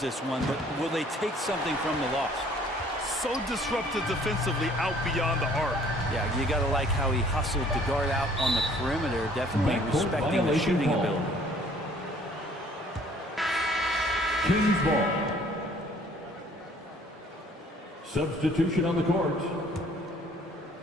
one, but will they take something from the loss? So disruptive defensively out beyond the arc. Yeah, you got to like how he hustled to guard out on the perimeter, definitely respecting the shooting ability. Kings ball. Substitution on the court.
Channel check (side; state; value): both; normal; correlation 0.57